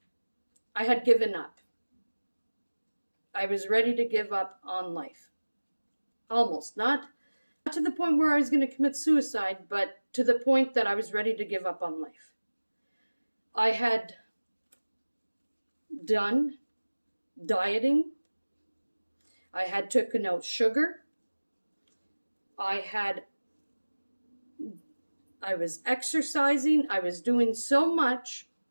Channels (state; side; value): inverted; both; correlation -1.00